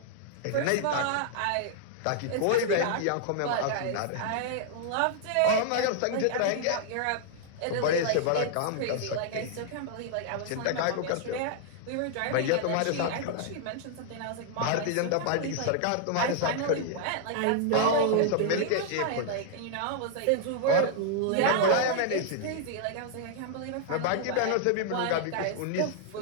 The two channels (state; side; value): different; both; correlation 0.00